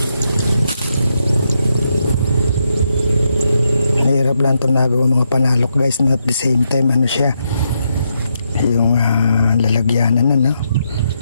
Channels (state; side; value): inverted; both; correlation -0.81